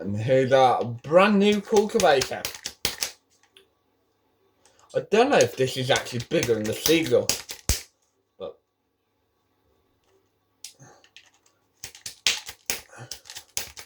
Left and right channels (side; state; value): both; identical; correlation 1.00